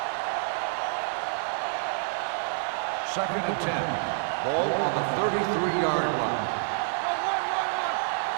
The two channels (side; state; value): left; silent; digital silence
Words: Second and 10. Ball on the 33-yard line.